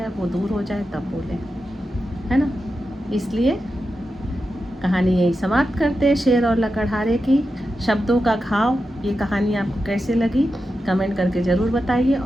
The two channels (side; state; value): both; normal; correlation 0.90